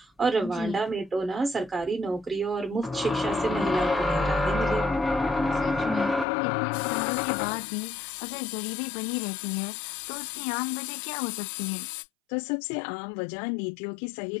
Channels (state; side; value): drops out; right; at 6.2 s